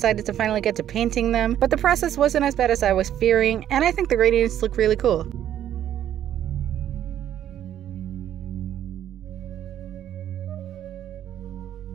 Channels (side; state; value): left; quieter; 10.9 dB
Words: to finally get to painting them, but the process wasn't as bad as I was fearing, and I think the gradients look really cool.